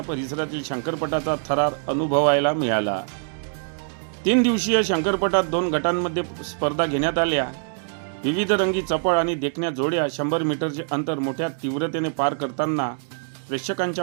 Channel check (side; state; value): left; silent; digital silence